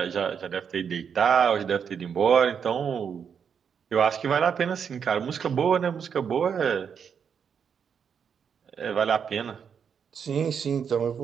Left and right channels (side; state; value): left; quieter; 7.2 dB